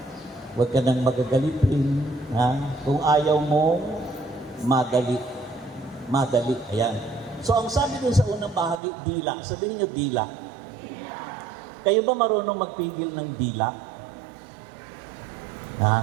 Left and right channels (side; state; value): left; drops out; at 8.8 s